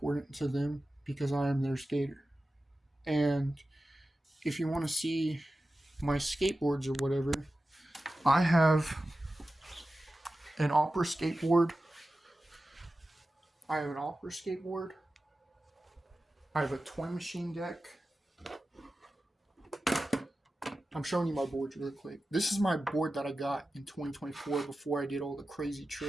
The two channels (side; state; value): both; normal; correlation 0.94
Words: to them because I am their skater. And if you want to see my skateboards or whatever, I have an opera skateboard. I have an opera skateboard. I have a toy machine deck. I'm showing you my boards really quick. This is my board that I got in 2024 before I did all the crazy